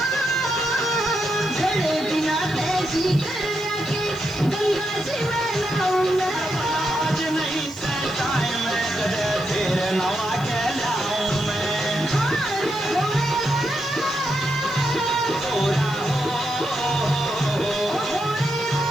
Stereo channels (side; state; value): left; noise; hiss, 23 dB below the sound